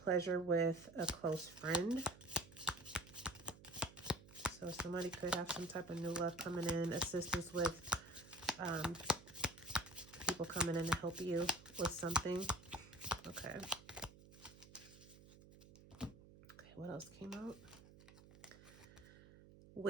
with a close friend. So somebody could have some type of new love coming in, assistance with people coming in to help you with something. Okay. Okay, what else came out?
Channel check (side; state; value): right; noise; hum, 20 dB below the sound